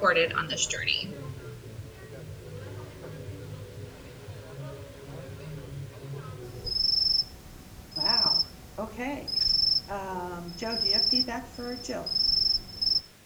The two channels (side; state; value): both; identical; correlation 1.00